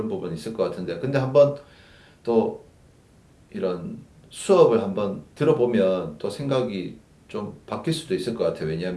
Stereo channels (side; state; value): both; identical; correlation 1.00